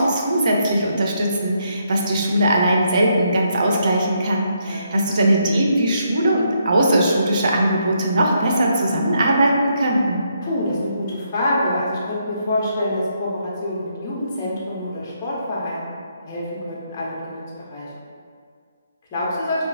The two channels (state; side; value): inverted; both; correlation -0.75